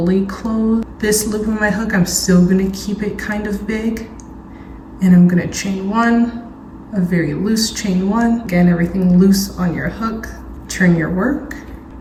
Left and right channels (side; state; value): both; identical; correlation 1.00